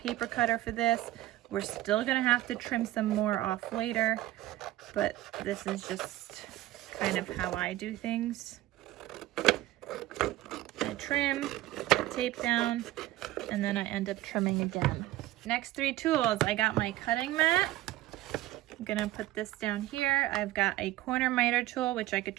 cutter for this. We're still gonna have to trim some more off later, but this is just kind of how I do things. I trim, put tape down, and then I end up trimming again. Next 3 tools, I got my cutting mat. I'm gonna put this down here. I've got a corner miter tool, which I could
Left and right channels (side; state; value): left; quieter; 15.9 dB